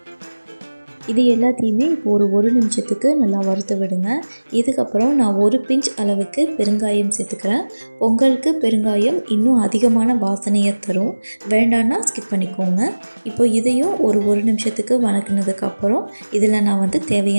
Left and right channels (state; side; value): inverted; both; correlation -1.00